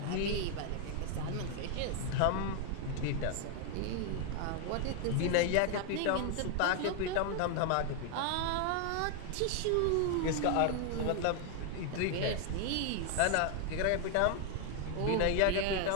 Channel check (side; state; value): both; different; correlation 0.00